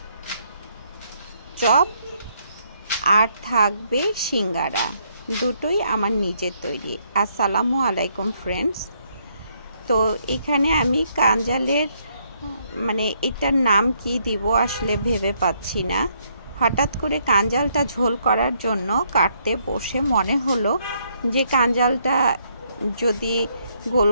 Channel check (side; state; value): both; inverted; correlation -0.72